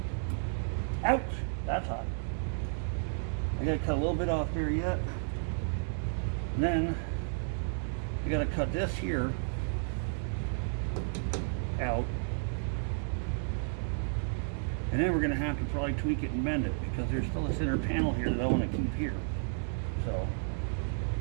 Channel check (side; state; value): left; silent; digital silence